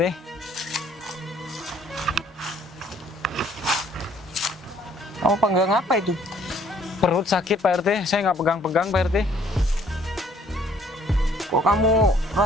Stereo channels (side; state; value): both; normal; correlation 0.61